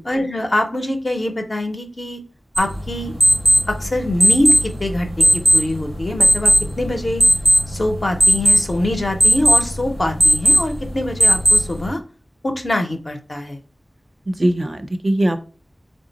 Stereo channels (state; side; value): normal; both; correlation 0.95